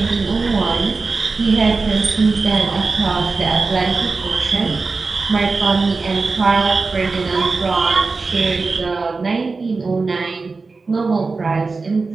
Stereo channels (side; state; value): left; quieter; 4.1 dB